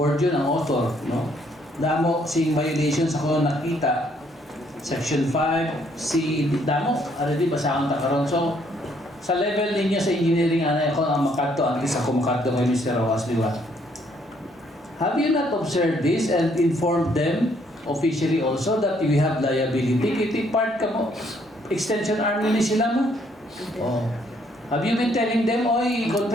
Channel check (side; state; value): both; normal; correlation 0.67